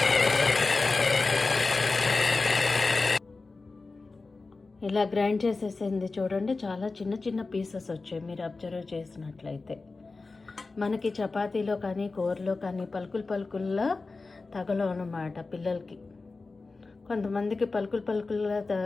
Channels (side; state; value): right; quieter; 3.8 dB